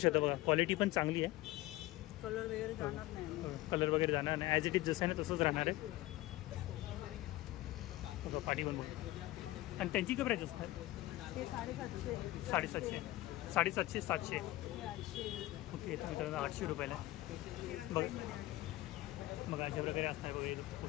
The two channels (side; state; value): right; quieter; 17.6 dB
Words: बघा. क्वालिटी पण चांगली आहे. कलर वगैरे जाणार नाही. ॲज इट इज जसं आहे ना तसंच राहणार आहे. बघा पाठी पण बघा. आणि त्यांची काय प्राईस असणार? 750. 750 700. ओके. तर मित्रांनो 800 रुपयाला. बघा बघा अशा प्रकारे असणार. बघा